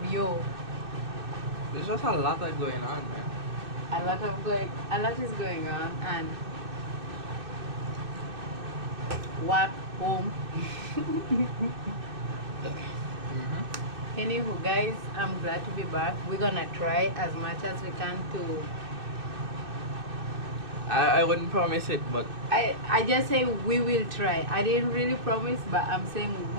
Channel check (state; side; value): late; left; 2.6 ms